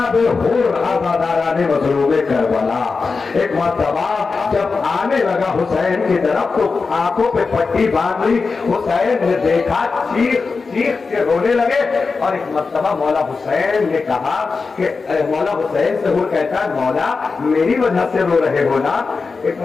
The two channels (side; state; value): right; quieter; 4.5 dB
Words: हुर आज़ादाराने मज़लूम करबला। एक मर्तबा जब आने लगा हुसैन की तरफ तो आंखों पे पट्टी बांध ली। हुसैन ने देखा, चीख के रोने लगे और एक मर्तबा मौला हुसैन ने कहा कि मौला हुसैन से हुर कहता है मौला मेरी वजह से रो रहे हो ना? एक